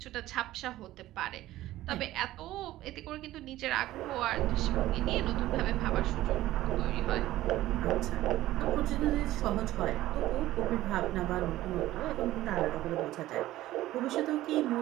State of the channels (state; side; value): quieter; left; 15.4 dB